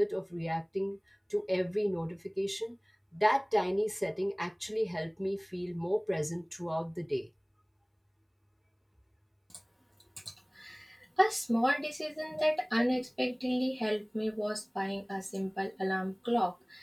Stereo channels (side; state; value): both; identical; correlation 1.00